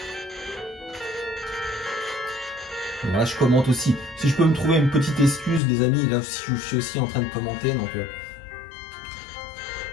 Là, je commente aussi. Si je peux me trouver une petite excuse, les amis, là, je suis aussi en train de commenter, donc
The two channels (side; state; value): right; drops out; at 5.6 s